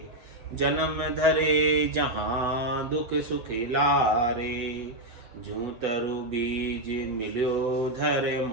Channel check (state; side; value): late; left; 8.1 ms